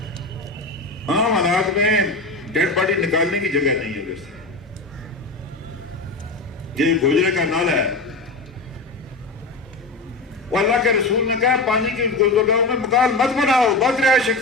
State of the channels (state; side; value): quieter; right; 3.3 dB